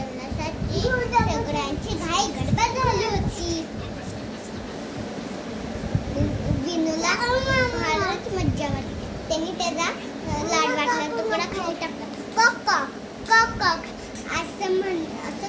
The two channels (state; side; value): identical; both; correlation 1.00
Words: सगळ्यांची घाई गडबड झाली होती. विनूला फारच मज्जा वाटली. त्यांनी त्याचा लाडवाचा तुकडा खाली टाकला. कॉक कॉक कॉक कॉक असं